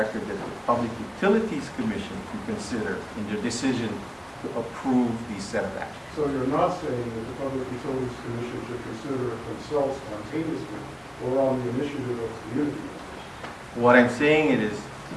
that the Public Utilities Commission can consider in their decision to approve these set of actions. So you're not saying that the Public Utilities Commission should consider it themselves spontaneously or on the initiative of community members? What I'm saying is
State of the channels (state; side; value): identical; both; correlation 1.00